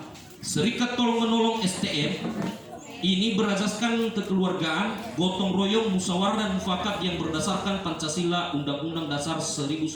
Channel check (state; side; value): identical; both; correlation 1.00